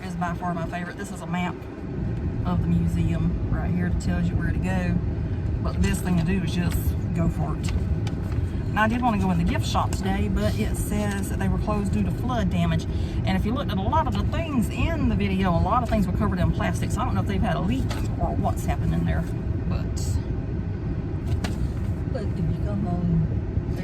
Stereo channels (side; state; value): both; identical; correlation 1.00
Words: is by far my favorite. This is a map of the museum right here that tells you where to go. But the best thing to do is just go for it. Now, I did want to go in the gift shop today, but it says that they were closed due to flood damage. And if you looked at a lot of the things in the video, a lot of things were covered in plastic. So I don't know if they've had a leak or what's happened in there. But if you come on,